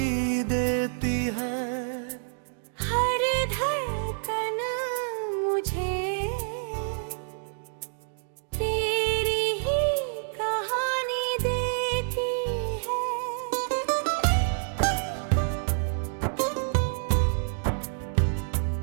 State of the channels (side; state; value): left; silent; digital silence